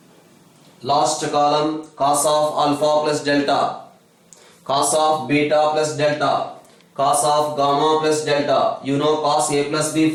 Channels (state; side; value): identical; both; correlation 1.00